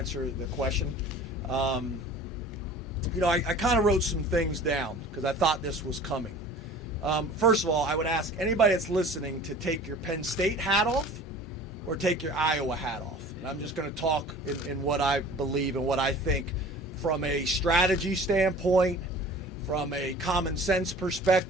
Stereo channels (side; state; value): both; normal; correlation 0.43